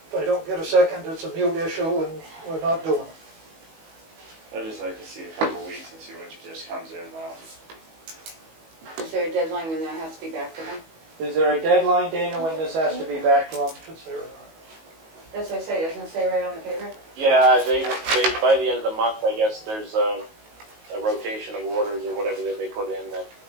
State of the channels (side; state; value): left; late; 19 ms